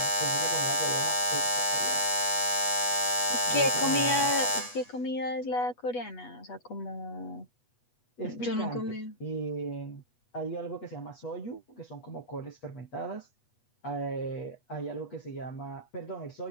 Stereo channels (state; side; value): late; right; 8.2 ms